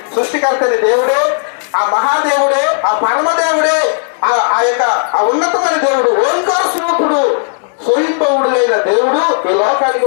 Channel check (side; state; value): right; silent; digital silence